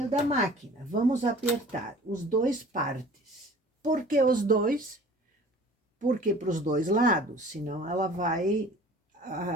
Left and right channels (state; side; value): normal; both; correlation 0.46